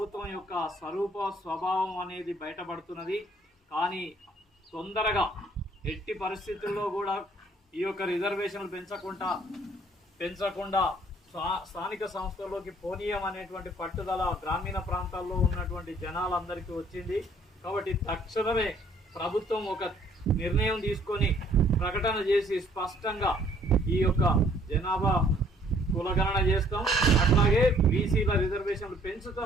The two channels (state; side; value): normal; both; correlation 0.61